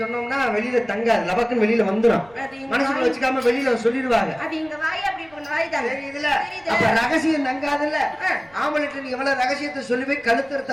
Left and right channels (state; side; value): noise; right; rumble, 29 dB below the sound